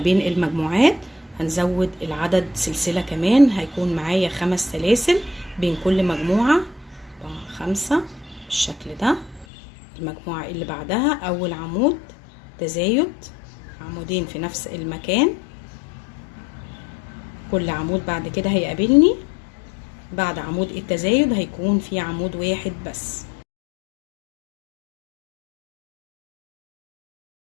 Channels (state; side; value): drops out; right; at 9.5 s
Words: المجموعات. هنزود العدد سلسلة كمان، هيكون معايا 5 سلاسل بين كل مجموعة. 4 5 بالشكل ده. المجموعة اللي بعدها اول عمود تزايد عمودين في نفس المكان. كل عمود بعد كده هيقابلني بعد عمود التزايد هيكون في عمود واحد بس.